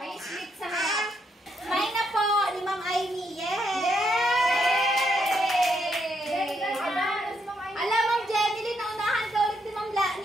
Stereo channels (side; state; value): both; normal; correlation 0.77